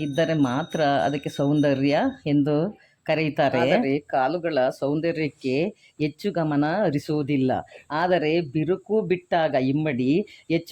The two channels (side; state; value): both; identical; correlation 1.00